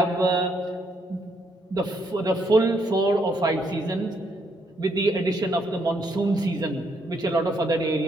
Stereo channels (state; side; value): normal; both; correlation 0.73